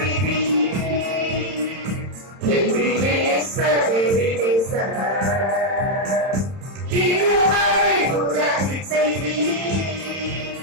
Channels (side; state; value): left; late; 31 ms